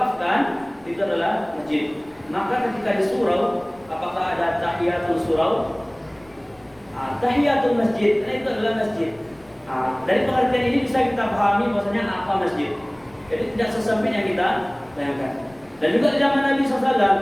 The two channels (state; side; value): noise; left; rumble, 29 dB below the sound